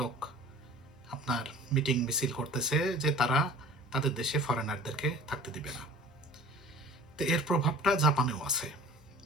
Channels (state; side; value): normal; both; correlation 0.44